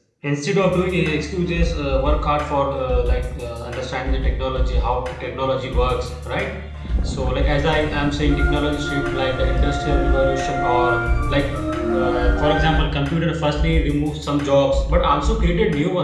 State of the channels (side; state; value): both; identical; correlation 1.00